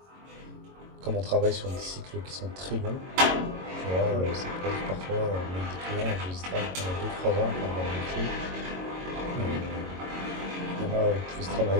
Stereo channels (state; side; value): late; left; 22 ms